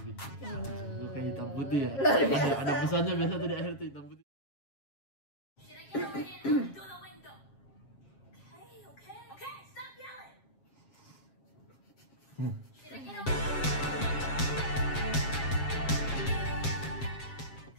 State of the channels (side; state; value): right; late; 7.4 ms